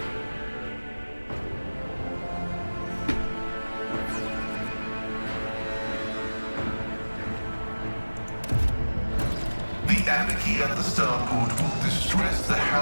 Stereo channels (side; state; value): both; inverted; correlation -1.00